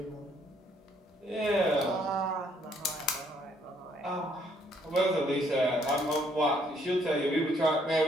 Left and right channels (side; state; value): both; normal; correlation 0.67